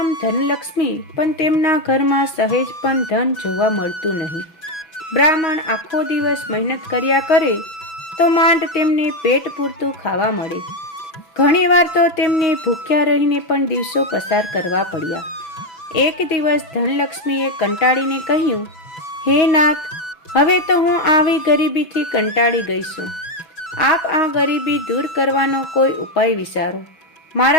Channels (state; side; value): late; right; 6.0 ms